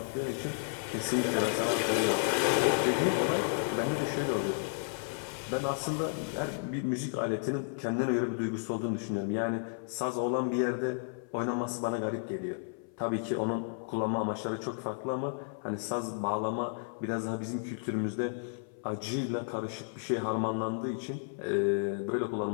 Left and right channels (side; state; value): right; silent; 56 dB below the other